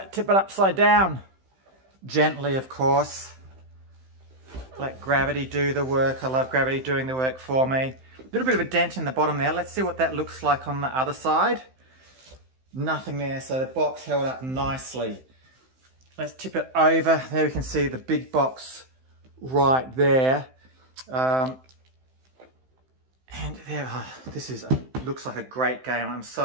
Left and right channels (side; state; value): left; late; 15 ms